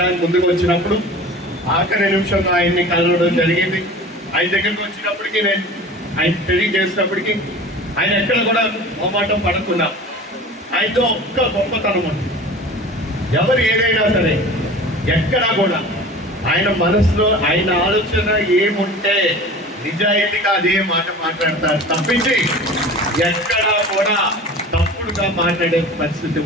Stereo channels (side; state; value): both; normal; correlation 0.39